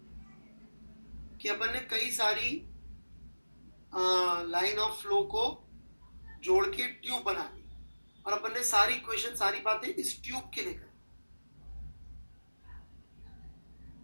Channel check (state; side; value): inverted; both; correlation -1.00